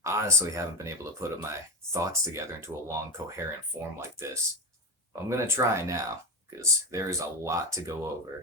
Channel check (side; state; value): both; normal; correlation 0.12